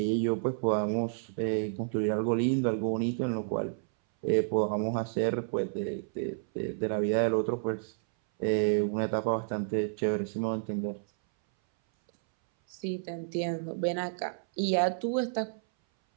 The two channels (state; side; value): silent; left; 58 dB below the other